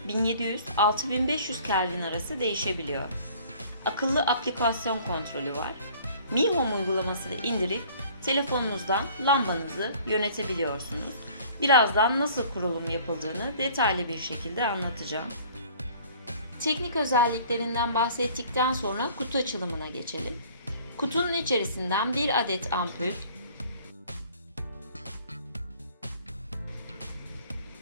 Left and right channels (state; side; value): inverted; both; correlation -0.52